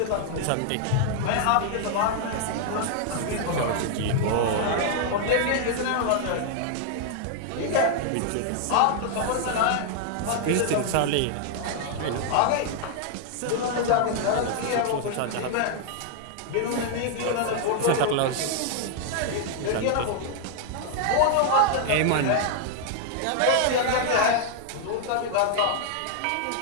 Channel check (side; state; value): both; different; correlation 0.00